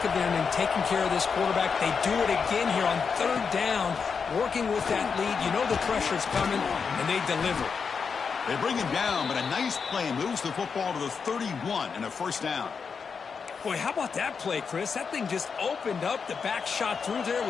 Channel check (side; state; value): right; quieter; 5.8 dB